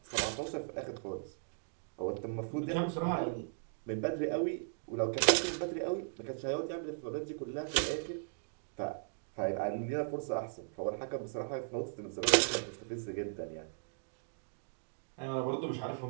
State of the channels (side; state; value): left; silent; digital silence